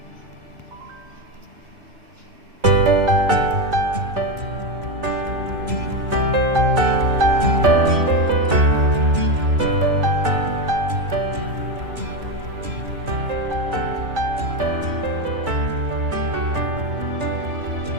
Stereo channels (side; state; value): left; late; 3.0 ms